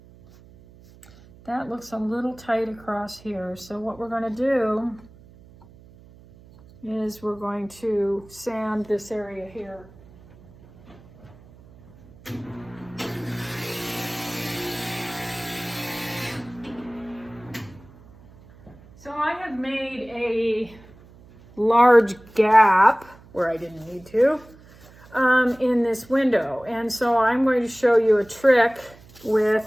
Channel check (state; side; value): noise; right; hum, 24 dB below the sound